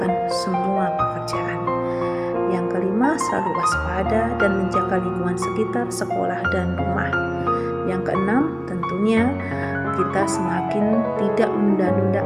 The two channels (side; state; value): both; identical; correlation 1.00